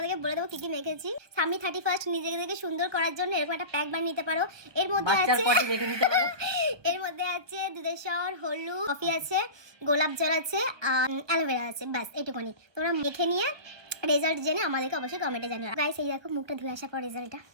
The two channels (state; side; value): late; left; 1.0 ms